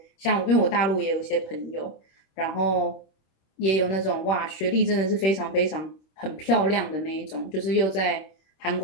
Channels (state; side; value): late; right; 26 ms